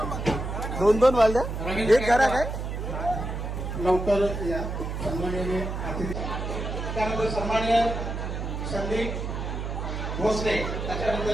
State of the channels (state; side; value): noise; right; hum, 4 dB below the sound